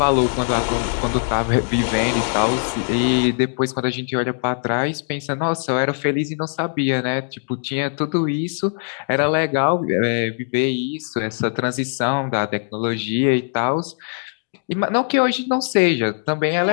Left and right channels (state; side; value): silent; right; digital silence